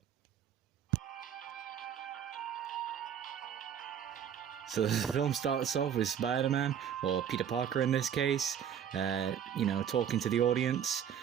So the film starts off with Spider-Man, or Peter Parker in this case, talking to the audience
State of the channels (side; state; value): left; quieter; 8.8 dB